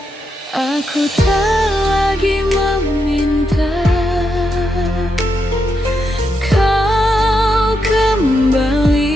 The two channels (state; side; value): normal; both; correlation 0.82